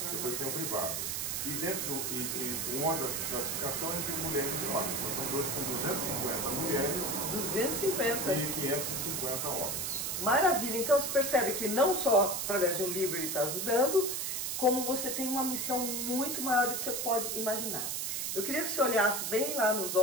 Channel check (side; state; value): right; noise; hiss, 1 dB below the sound